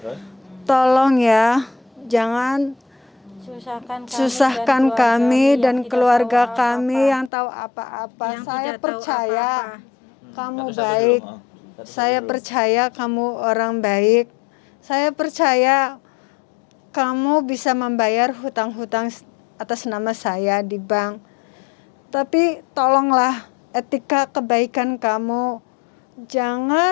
Terus? tolong ya, jangan susahkan kami dan keluarga kami yang tahu apa-apa. Saya percaya kamu baik. Saya percaya kamu orang baik. Saya percaya kamu bisa membayar hutang-hutang atas nama saya di bank. Tapi tolonglah etika kebaikan kamu.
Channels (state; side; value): drops out; right; at 7.3 s